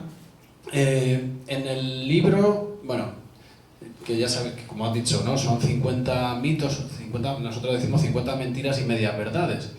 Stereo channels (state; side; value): identical; both; correlation 1.00